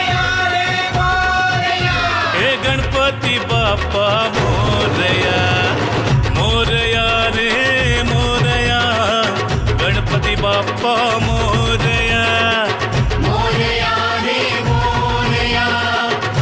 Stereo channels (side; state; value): both; identical; correlation 1.00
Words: हे गणपती बाप्पा मोरया, मोरया रे मोरया, गणपती बाप्पा मोरया, मोरया रे मोरया,